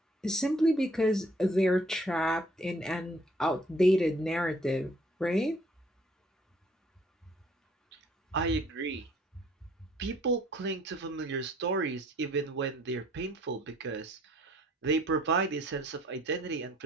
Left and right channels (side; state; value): both; normal; correlation 0.60